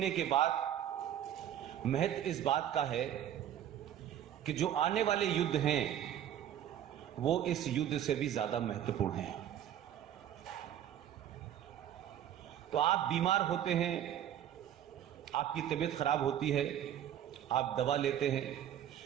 के बाद महत्व इस बात का है कि जो आने वाले युद्ध हैं वो इस युद्ध से भी ज्यादा महत्वपूर्ण हैं। तो आप बीमार होते हैं, आपकी तबीयत खराब होती है, आप दवा लेते हैं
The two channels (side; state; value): left; quieter; 10.7 dB